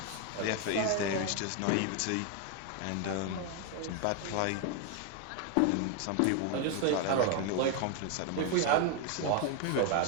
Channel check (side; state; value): both; different; correlation 0.01